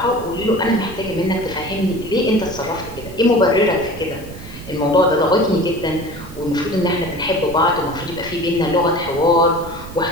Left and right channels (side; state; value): right; noise; rumble, 14 dB below the sound